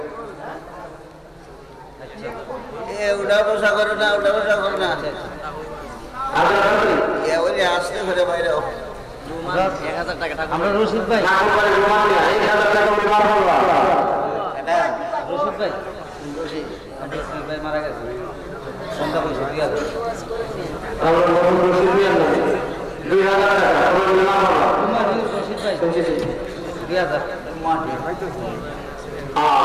উঠা বসা করো না ওই আসতে ঘরে বাইরে 1000 টাকা আমরা রশিদ ভাই রশিদ ভাই মারা গেছে সন্ধ্যা পয়সা 2000 টাকা রশিদ ভাই 2000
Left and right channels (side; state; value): both; identical; correlation 1.00